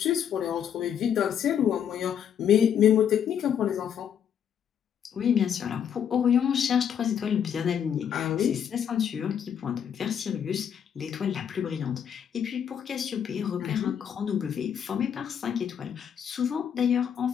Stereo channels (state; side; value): quieter; right; 8.6 dB